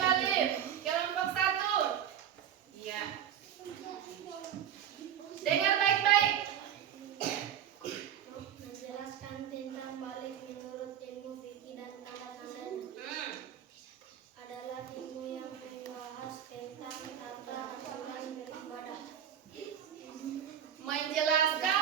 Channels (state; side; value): quieter; left; 9.5 dB